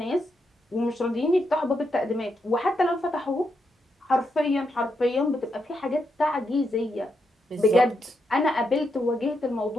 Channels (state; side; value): normal; both; correlation 0.82